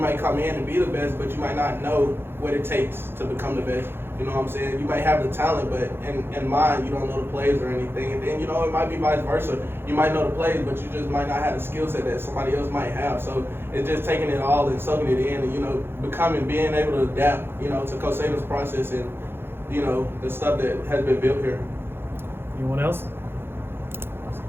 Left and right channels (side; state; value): left; late; 0.11 ms